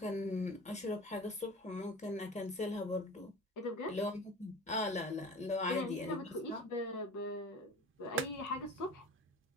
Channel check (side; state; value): both; normal; correlation 0.38